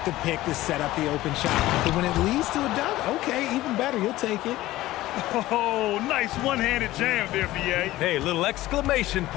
the pick to set up the open shot. But when it leads to a dunk, okay, even better, you'll take it. Oh, nice one-handed jam there, BA. Hey, little exclamation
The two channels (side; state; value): right; quieter; 16.5 dB